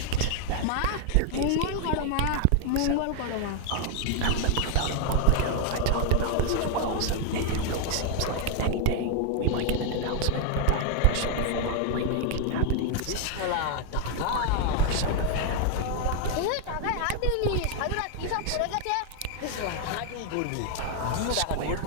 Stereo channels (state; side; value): different; both; correlation 0.00